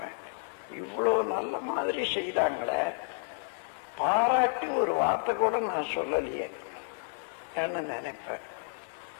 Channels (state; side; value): silent; right; 57 dB below the other